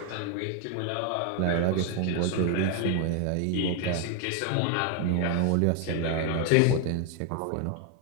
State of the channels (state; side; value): different; both; correlation 0.01